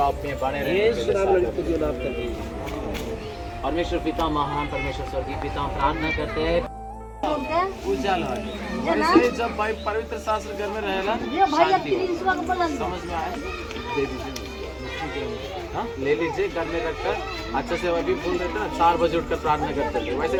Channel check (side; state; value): both; identical; correlation 1.00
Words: परमेश्वर पिता महान, परमेश्वर स्वर्गीय पिता, हम प्रार्थना करते हैं उजाला वैसे जब भाई पवित्र शास्त्र घर में रहेला शांति हो। समझ में आया? दे दीजिए, हाँ ले लीजिए, घर में रखकर अच्छे से वही बोल देते ना, 4 बजे उठकर प्रार्थना करते थे, वैसे